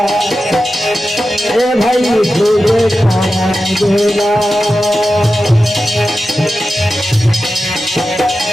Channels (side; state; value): both; normal; correlation 0.92